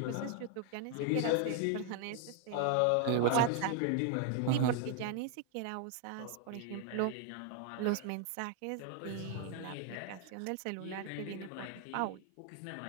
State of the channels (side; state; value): both; different; correlation 0.00